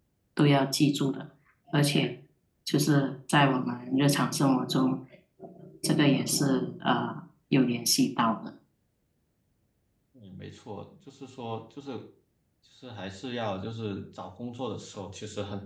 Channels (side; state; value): both; identical; correlation 1.00